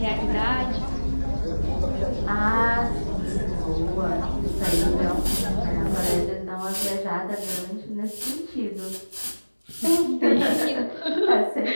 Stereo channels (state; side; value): inverted; both; correlation -1.00